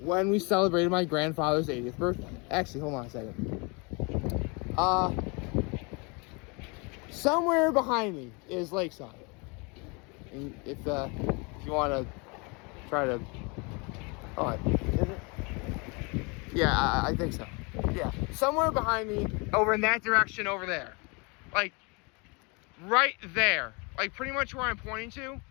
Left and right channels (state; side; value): quieter; right; 30.6 dB